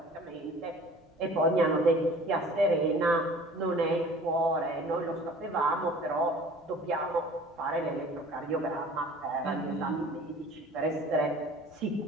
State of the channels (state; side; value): normal; both; correlation 0.47